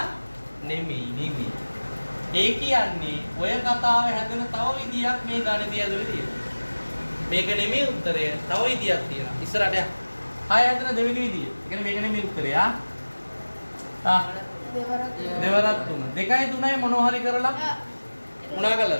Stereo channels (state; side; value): inverted; both; correlation -1.00